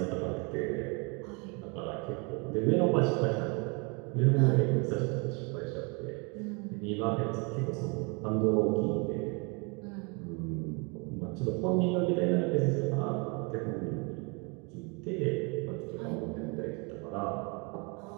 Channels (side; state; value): left; quieter; 31.8 dB